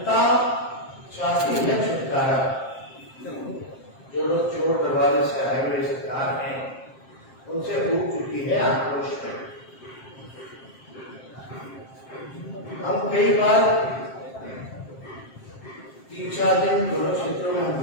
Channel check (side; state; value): right; late; 7.6 ms